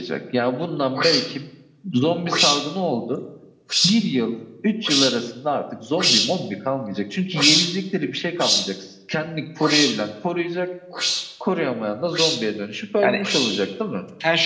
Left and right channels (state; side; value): identical; both; correlation 1.00